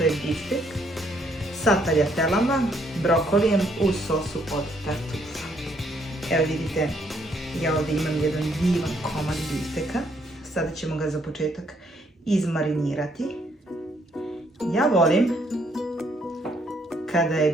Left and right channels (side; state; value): both; normal; correlation 0.70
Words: je biftek sa taljatelama, brokolijem u sosu od tartufa. Evo vidite, ja ovdje imam jedan divan komad bifteka, sada ćemo ga za početak izmarinirati. Ja volim kada je